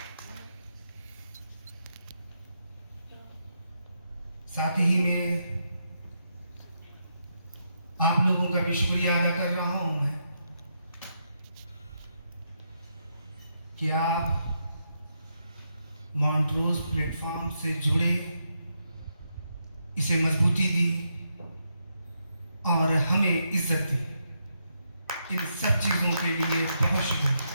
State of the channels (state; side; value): inverted; both; correlation -0.81